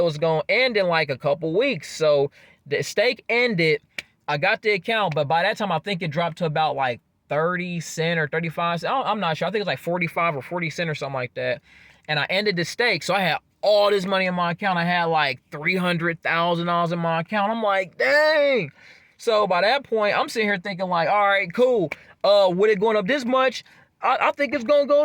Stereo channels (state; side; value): identical; both; correlation 1.00